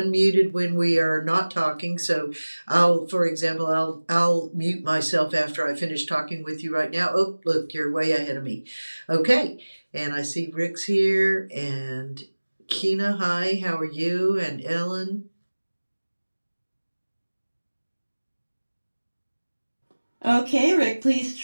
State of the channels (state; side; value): inverted; both; correlation -1.00